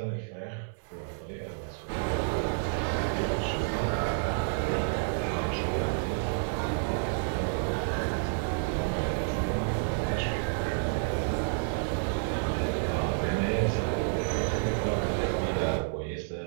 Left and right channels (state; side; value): silent; left; 58 dB below the other